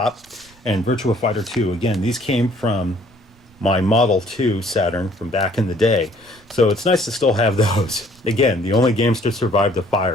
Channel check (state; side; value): noise; right; rumble, 29 dB below the sound